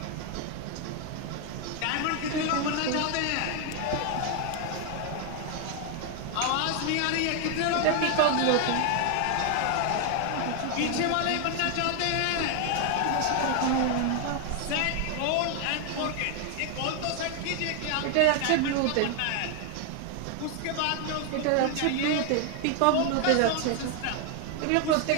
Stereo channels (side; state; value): both; different; correlation 0.00